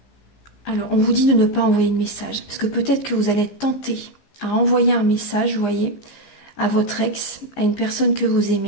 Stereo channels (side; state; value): right; late; 15 ms